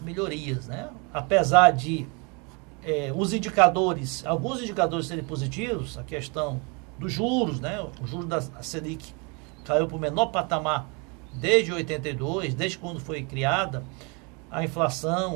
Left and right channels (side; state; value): left; quieter; 31.9 dB